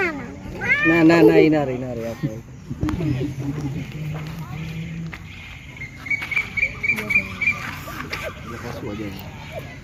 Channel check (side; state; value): both; identical; correlation 1.00